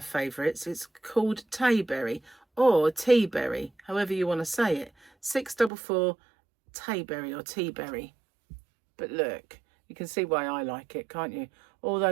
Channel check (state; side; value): drops out; left; at 5.7 s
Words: favourites. It's called Tayberry or Teaberry, however you want to say it. 644 Tayberry or Teaberry. But look, you can see why I like it, can't you? All